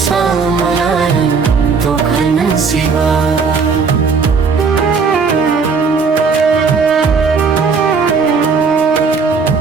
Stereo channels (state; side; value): quieter; left; 5.1 dB